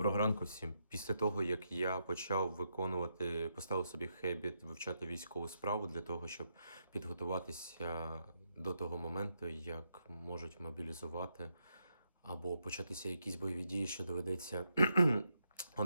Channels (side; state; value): both; inverted; correlation -0.81